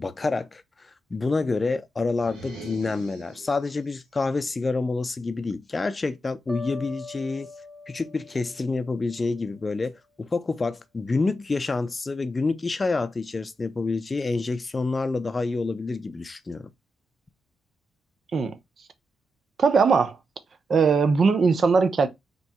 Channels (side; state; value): both; normal; correlation 0.85